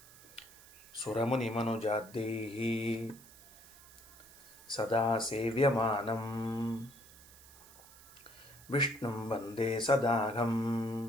ಸುರಮುನಿಮನುಜಾದ್ಯೈಃ ಸದಾ ಸೇವ್ಯಮಾನಂ ವಿಷ್ಣುಂ ವಂದೇ ಸದಾಘಂ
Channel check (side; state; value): right; noise; hiss, 21 dB below the sound